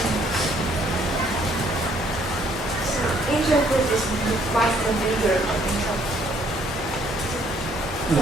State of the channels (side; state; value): both; normal; correlation 0.65